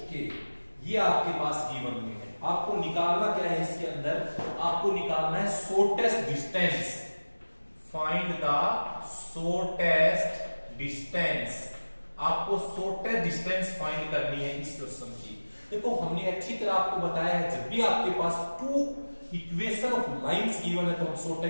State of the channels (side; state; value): both; inverted; correlation -1.00